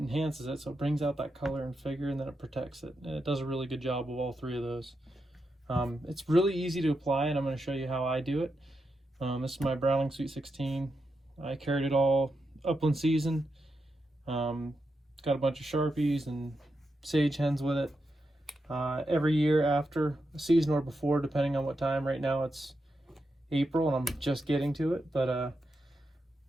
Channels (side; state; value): both; normal; correlation 0.86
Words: it, so it brings out that color and figure, and then it protects it. And it does a really good job of all three of those. It's really easy to apply, and I'm going to show you how I do it. This is my Browning Sweet 16. I carried it all upland season. Got a bunch of Sharpies and sage hens with it. Every year after a season or before, depending on what time. Right now it's April and I'm just getting to it, but